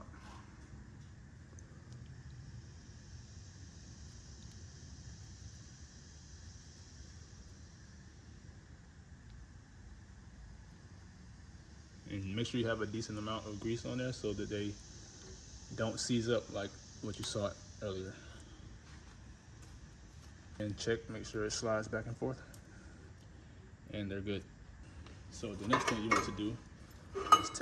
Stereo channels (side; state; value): both; identical; correlation 1.00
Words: And make sure you have a decent amount of grease on there so that they don't seize up like what you saw earlier. And check, make sure it slides back and forth. And they're good. So the next thing you want to do is